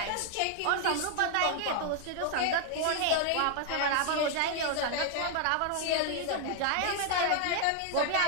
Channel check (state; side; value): different; both; correlation 0.00